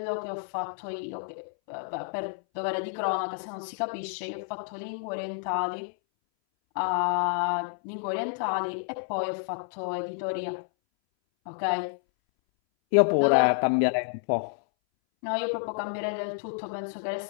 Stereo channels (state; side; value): silent; right; 58 dB below the other